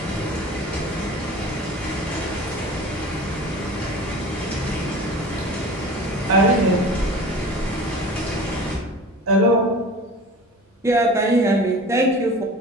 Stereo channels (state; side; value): normal; both; correlation 0.38